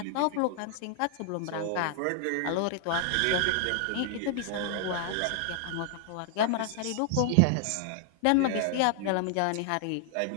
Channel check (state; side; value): different; both; correlation 0.00